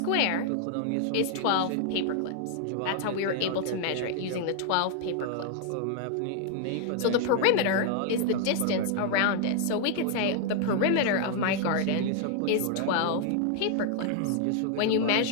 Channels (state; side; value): different; both; correlation 0.00